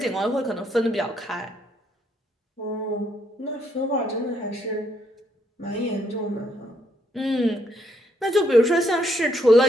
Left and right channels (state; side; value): normal; both; correlation 0.73